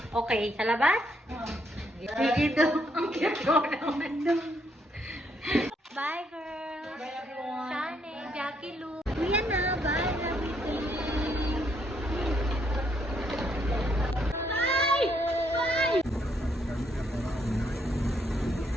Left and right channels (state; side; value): normal; both; correlation 0.73